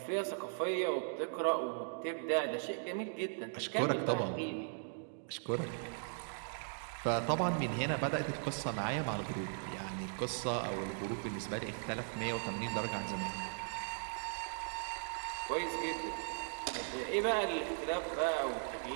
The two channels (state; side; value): silent; left; digital silence